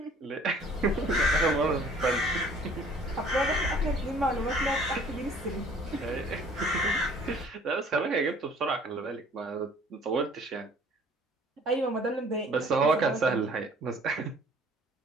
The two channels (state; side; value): normal; both; correlation 0.54